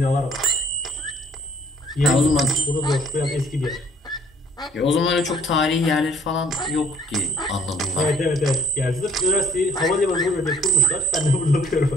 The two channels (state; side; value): normal; both; correlation 0.60